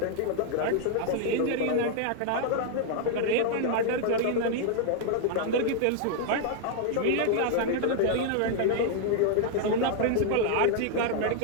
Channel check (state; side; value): different; both; correlation 0.00